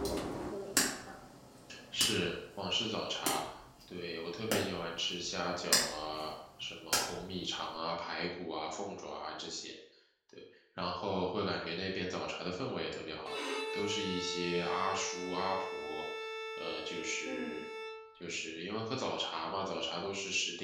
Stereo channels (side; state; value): both; identical; correlation 1.00